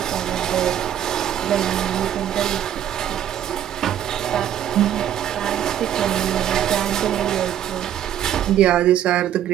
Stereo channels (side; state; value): left; quieter; 10.7 dB